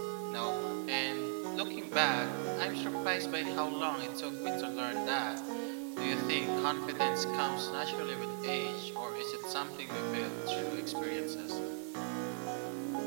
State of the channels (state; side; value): silent; left; digital silence